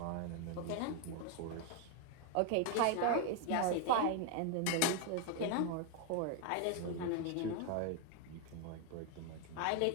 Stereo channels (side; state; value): both; different; correlation 0.00